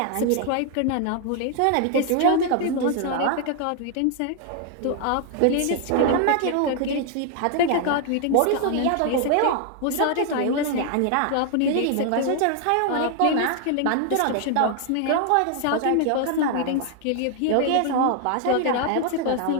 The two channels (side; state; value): both; different; correlation 0.00